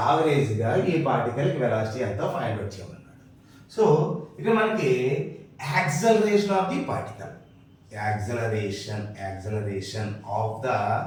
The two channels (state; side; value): identical; both; correlation 1.00